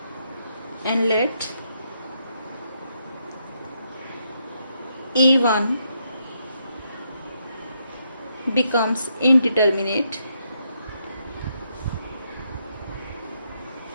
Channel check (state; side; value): inverted; both; correlation -0.78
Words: and let a1 becomes indeterminate